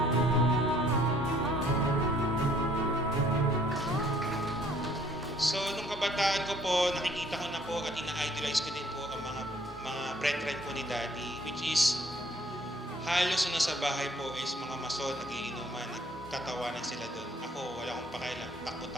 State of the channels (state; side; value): normal; both; correlation 0.61